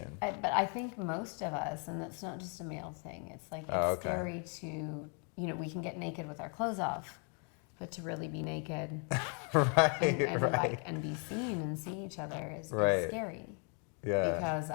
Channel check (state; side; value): quieter; right; 39.1 dB